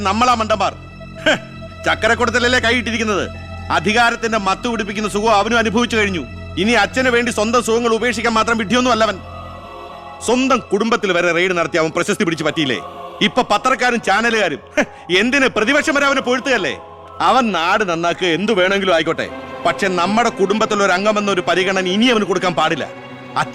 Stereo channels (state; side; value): identical; both; correlation 1.00